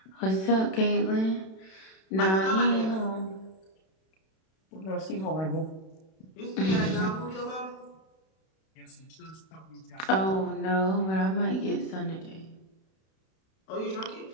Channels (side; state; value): right; late; 32 ms